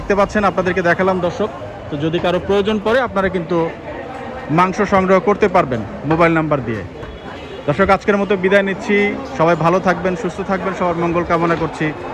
পাচ্ছেন, আপনাদেরকে দেখালাম দর্শক। তো যদি কারো প্রয়োজন পড়ে আপনারা কিন্তু মাংস সংগ্রহ করতে পারবেন মোবাইল নাম্বার দিয়ে। দর্শক আজকের মতো বিদায় নিচ্ছি, সবাই ভালো থাকবেন, সুস্থ থাকবেন, সবার মঙ্গল কামনা করছি।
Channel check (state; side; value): identical; both; correlation 1.00